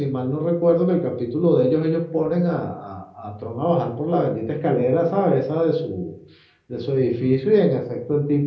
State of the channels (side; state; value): both; identical; correlation 1.00